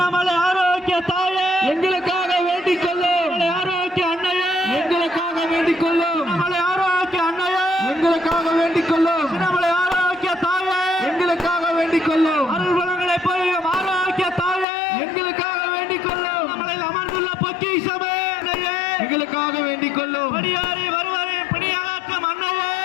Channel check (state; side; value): drops out; right; at 14.7 s